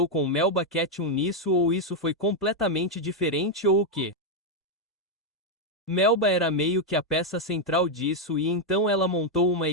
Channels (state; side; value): normal; both; correlation 0.01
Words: com Melba Ketchum nisso ou isso foi completamente diferente ou o quê? Melba era meio que a peça central disso e então ela montou uma